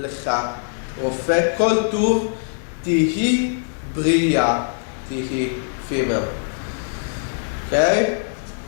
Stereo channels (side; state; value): right; silent; digital silence